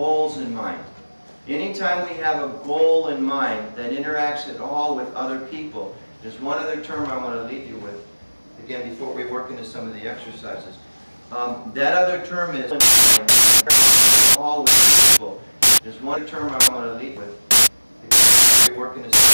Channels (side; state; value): both; inverted; correlation -1.00